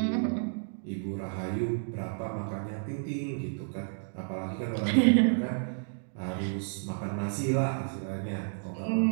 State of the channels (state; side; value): silent; left; digital silence